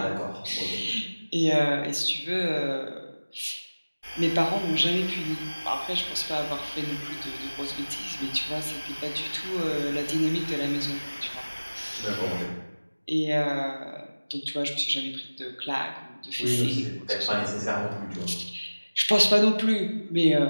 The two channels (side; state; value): both; inverted; correlation -1.00